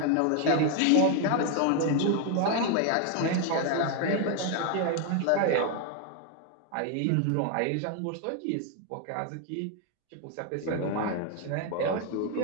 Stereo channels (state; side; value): different; both; correlation 0.01